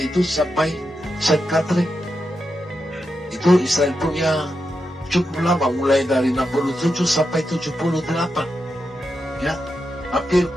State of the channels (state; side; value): normal; both; correlation 0.87